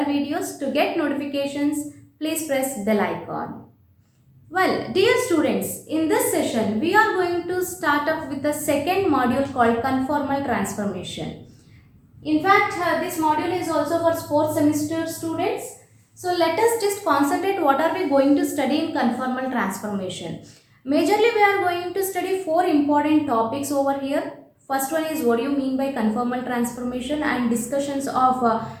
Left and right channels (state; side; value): identical; both; correlation 1.00